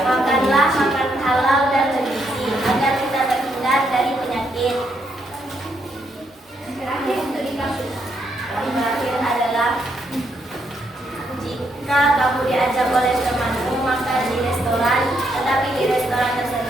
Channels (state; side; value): normal; both; correlation 0.76